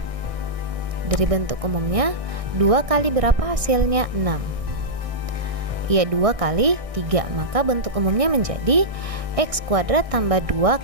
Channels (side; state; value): left; late; 1.6 ms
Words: dari bentuk umumnya, 2 kali berapa hasilnya? 6. Ya, 2 kali 3. Maka bentuk umumnya menjadi x kuadrat tambah 2